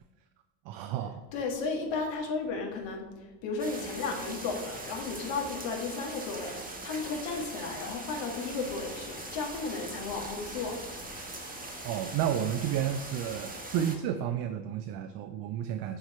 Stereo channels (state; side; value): normal; both; correlation 0.10